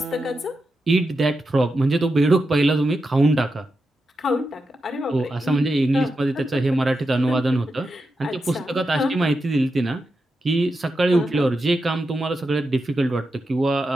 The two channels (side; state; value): both; normal; correlation 0.88